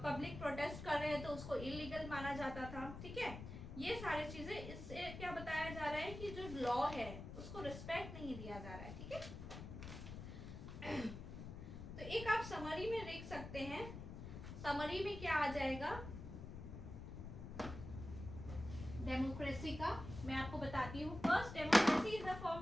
पब्लिक प्रोटेस्ट कर रहे हैं तो उसको इलीगल माना जाता था, ठीक है। ये सारी चीजें, इससे क्या बताया जा रहा है कि जो लॉ है उसको रिस्पेक्ट नहीं दिया जा रहा है, ठीक है। तो एक आप समरी में देख सकते हैं, समरी में क्या आ जाएगा डेमोक्रेसी का, मैं आपको बताती हूँ। First, democracy is a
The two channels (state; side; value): noise; left; rumble, 9 dB below the sound